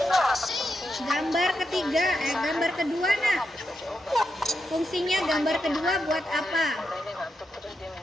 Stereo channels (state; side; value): normal; both; correlation 0.85